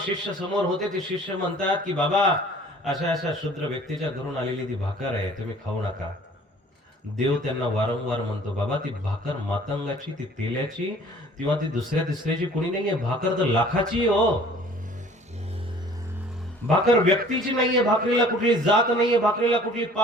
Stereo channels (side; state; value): both; normal; correlation 0.51